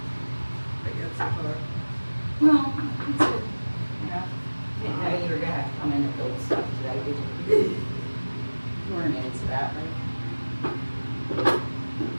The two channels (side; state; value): both; inverted; correlation -1.00